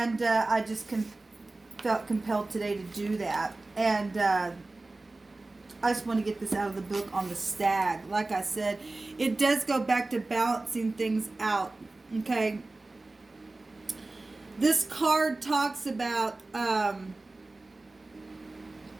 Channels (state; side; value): quieter; left; 3.1 dB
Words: I just felt compelled today to do that. And... I just want to get this out of the book on the stag. Like I said, it does go back to balancing things out. Okay. This card talks about